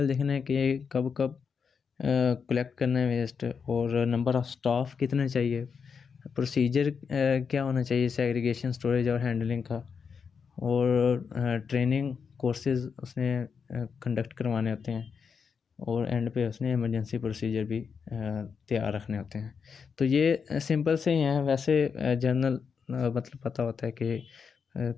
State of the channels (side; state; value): right; quieter; 6.1 dB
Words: देखना है कि कब कब कलेक्ट करना है वेस्ट और नंबर ऑफ़ स्टाफ कितने चाहिए, प्रोसीजर क्या होना चाहिए सेग्रीगेशन, स्टोरेज और हैंडलिंग का, और ट्रेनिंग कोर्सेज उसने कंडक्ट करवाने होते हैं और एंड पे उसने इमरजेंसी प्रोसीजर भी तैयार रखने होते हैं। तो ये सिंपल से ही हैं, वैसे जनरल मतलब पता होता है कि